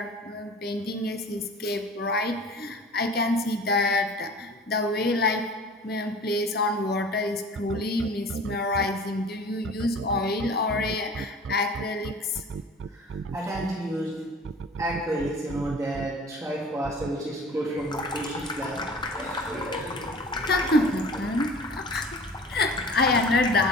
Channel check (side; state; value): both; normal; correlation 0.43